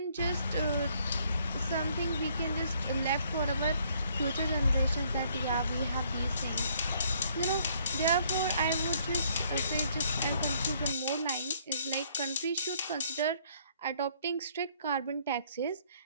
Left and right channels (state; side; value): inverted; both; correlation -0.65